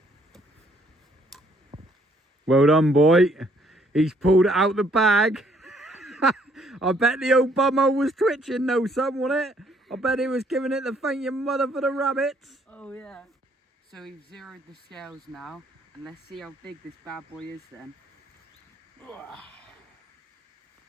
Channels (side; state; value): both; normal; correlation 0.66